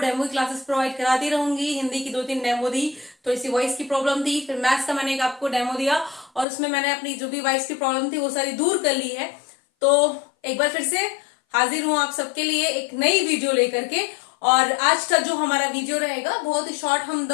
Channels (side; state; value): right; drops out; at 6.5 s